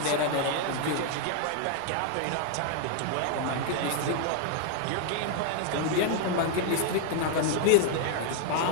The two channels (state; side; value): different; both; correlation 0.00